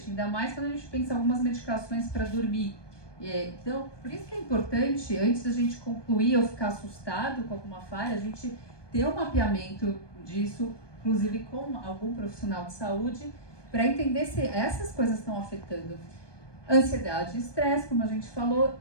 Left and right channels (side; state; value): right; late; 1.2 ms